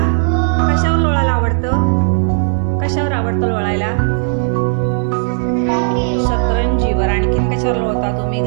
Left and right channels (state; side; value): silent; left; digital silence